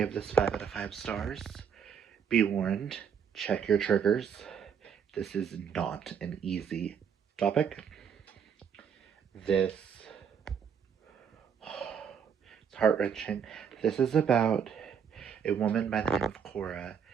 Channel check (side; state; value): left; quieter; 7.4 dB